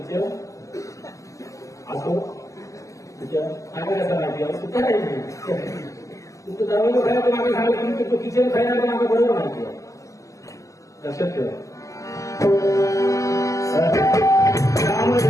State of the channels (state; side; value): late; right; 0.16 ms